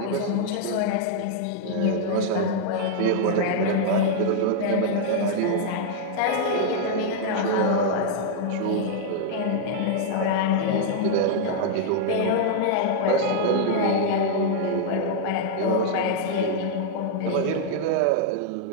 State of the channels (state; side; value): different; both; correlation -0.01